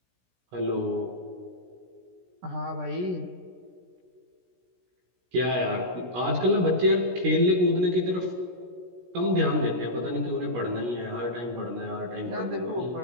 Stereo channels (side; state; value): left; late; 17 ms